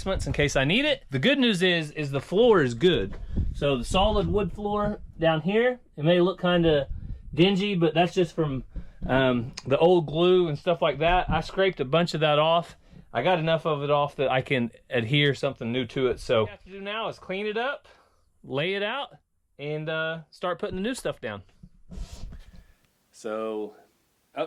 in case I need it. The good news is the floor is good. So the solid wood floor down here, it may look kind of dingy, but that's just from the old glue and stuff like that. I scraped a bunch of that off. I got enough of it off that I can adhere something new to it. So what we have to do now is clean it up, lay it out, and start putting the new stuff down. So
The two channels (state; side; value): identical; both; correlation 1.00